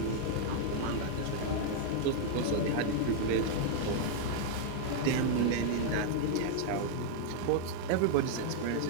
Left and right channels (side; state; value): both; different; correlation -0.01